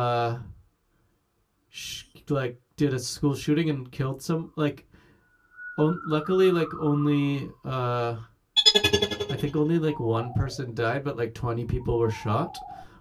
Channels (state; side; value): identical; both; correlation 1.00